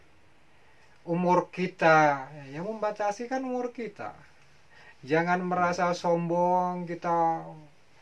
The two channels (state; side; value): identical; both; correlation 1.00